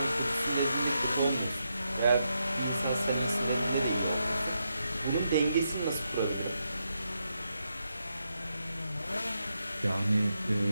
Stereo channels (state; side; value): inverted; both; correlation -0.83